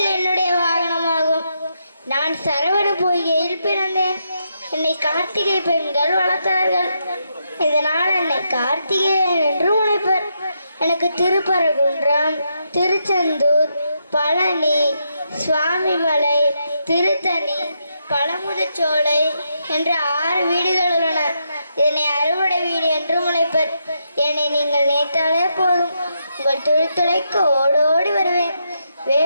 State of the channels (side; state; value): both; inverted; correlation -0.81